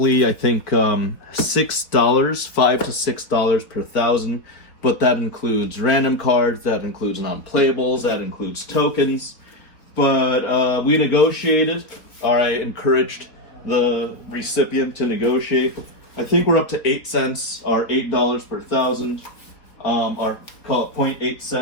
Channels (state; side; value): late; right; 4.0 ms